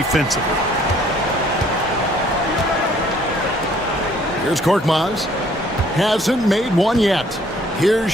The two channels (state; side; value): normal; both; correlation 0.60